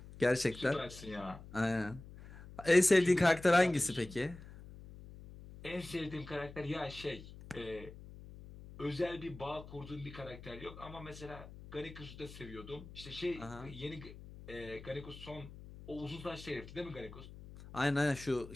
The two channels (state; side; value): noise; left; hum, 16 dB below the sound